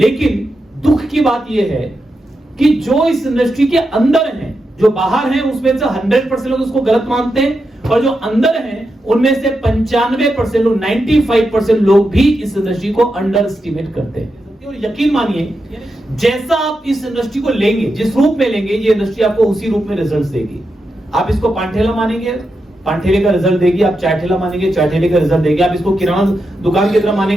दुख की बात यह है कि जो इस इंडस्ट्री के अंदर हैं, जो बाहर हैं उसमें से 100% लोग उसको गलत मानते हैं, और जो अंदर हैं उनमें से 95% लोग, 95% लोग भी इस इंडस्ट्री को अंडर एस्टिमेट करते हैं। और यकीन मानिए, जैसा आप इस इंडस्ट्री को लेंगे, जिस रूप में लेंगे, ये इंडस्ट्री आपको उसी रूप में रिजल्ट देगी। आप इसको पांठेला मानेंगे, पांठेले का रिजल्ट देगी। आप चाय ठेला मानेंगे, चाय ठेले का रिजल्ट देगी। आप इसको किराना दुकान की तरह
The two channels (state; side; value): normal; both; correlation 0.87